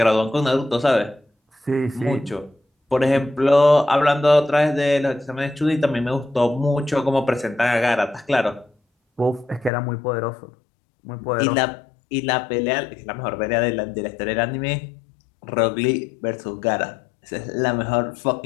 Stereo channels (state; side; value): drops out; right; at 9.7 s